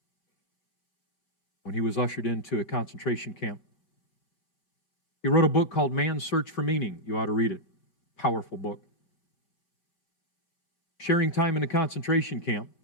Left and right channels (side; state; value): right; late; 5.0 ms